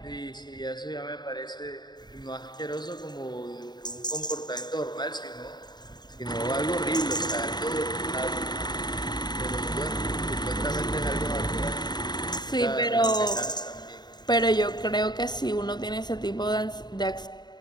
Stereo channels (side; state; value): right; late; 0.20 ms